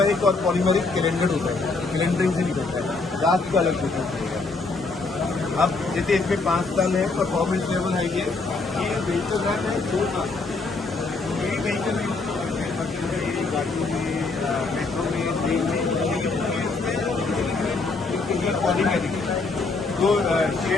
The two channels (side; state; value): right; quieter; 3.8 dB